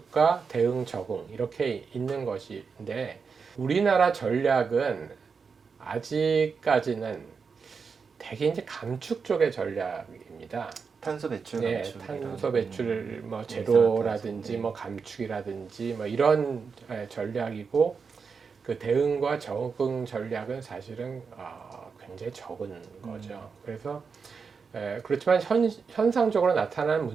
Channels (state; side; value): quieter; left; 5.5 dB